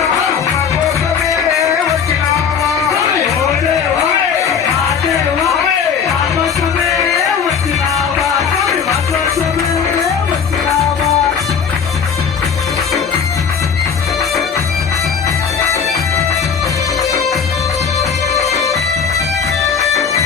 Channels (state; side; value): quieter; right; 6.7 dB